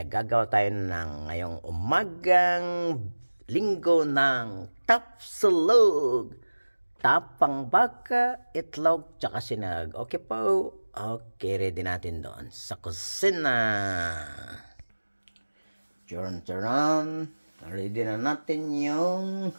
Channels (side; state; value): both; inverted; correlation -1.00